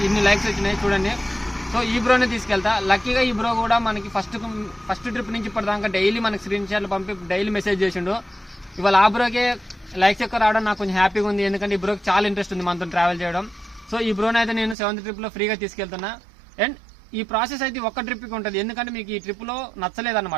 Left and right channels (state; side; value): drops out; left; at 14.8 s